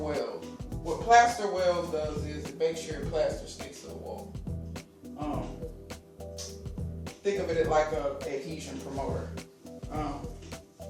What plaster wells does is it makes sure your plaster sticks to the wall. Think of it like a adhesion promoter.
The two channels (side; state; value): both; identical; correlation 1.00